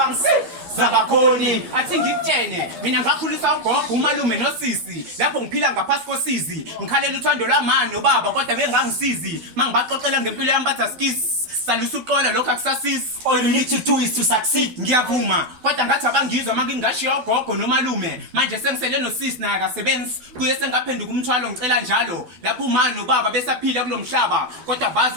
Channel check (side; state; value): left; late; 12 ms